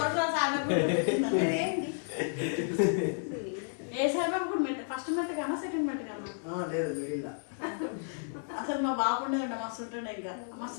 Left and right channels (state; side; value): silent; right; digital silence